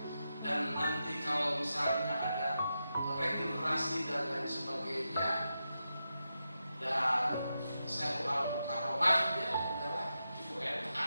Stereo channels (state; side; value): inverted; both; correlation -0.89